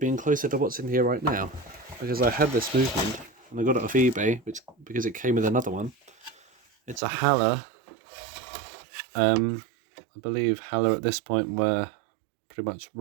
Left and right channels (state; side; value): drops out; left; at 7.0 s